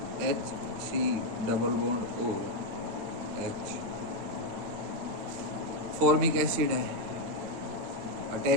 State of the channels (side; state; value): left; late; 9.2 ms